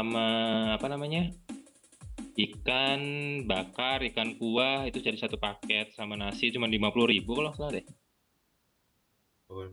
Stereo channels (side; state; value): both; identical; correlation 1.00